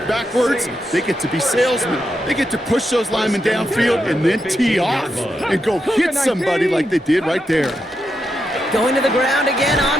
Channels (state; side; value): normal; both; correlation 0.84